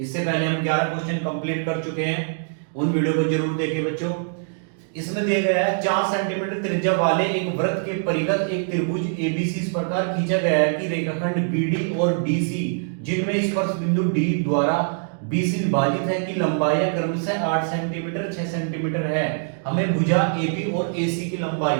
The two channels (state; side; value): silent; left; digital silence